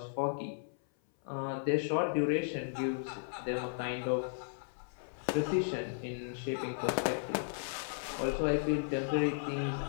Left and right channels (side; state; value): right; silent; 54 dB below the other